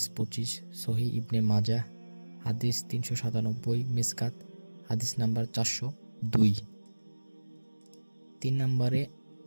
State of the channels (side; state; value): both; inverted; correlation -1.00